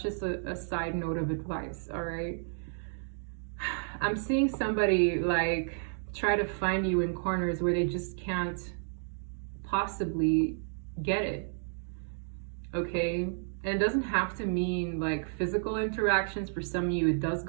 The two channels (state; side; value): silent; left; digital silence